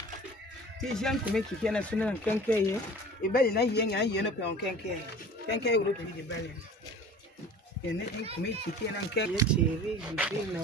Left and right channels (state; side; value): normal; both; correlation 0.43